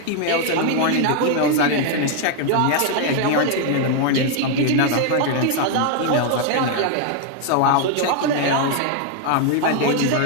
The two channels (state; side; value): different; both; correlation 0.00